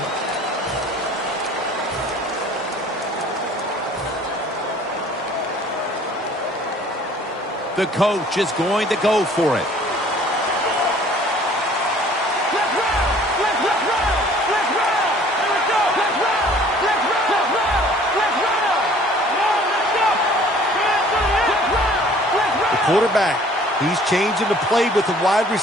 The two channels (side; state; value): both; normal; correlation 0.53